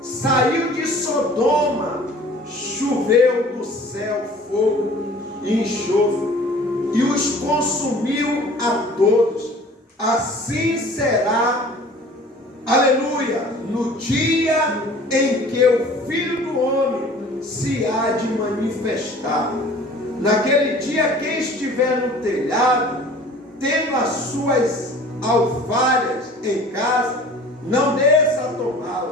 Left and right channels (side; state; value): both; normal; correlation 0.47